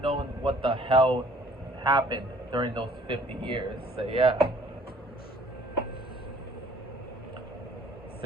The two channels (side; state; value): both; normal; correlation 0.57